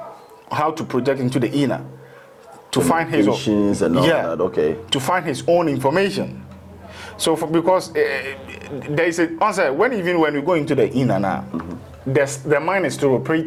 how to project into the inner to find his own and all that. Okay. To find his own information. So because there is a answer when we go into the inner now, the mind is still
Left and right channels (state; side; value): identical; both; correlation 1.00